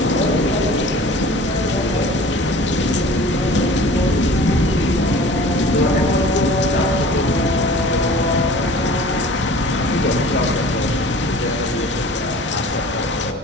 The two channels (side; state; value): both; normal; correlation 0.44